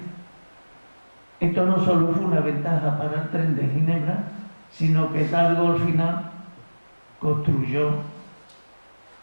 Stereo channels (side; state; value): both; inverted; correlation -1.00